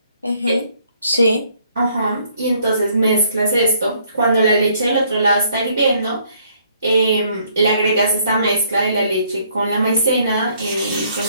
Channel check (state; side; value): inverted; both; correlation -0.65